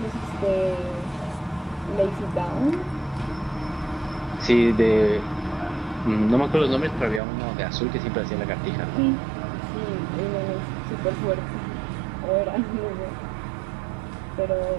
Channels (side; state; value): left; drops out; at 7.2 s